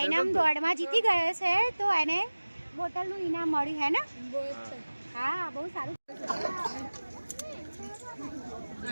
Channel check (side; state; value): both; inverted; correlation -1.00